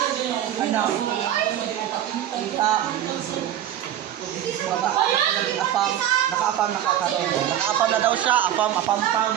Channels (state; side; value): quieter; left; 11.4 dB